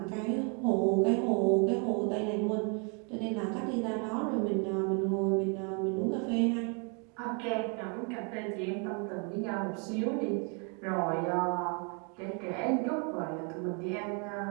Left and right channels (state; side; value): quieter; left; 36.6 dB